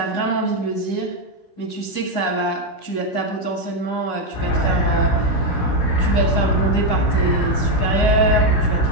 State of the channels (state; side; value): late; right; 16 ms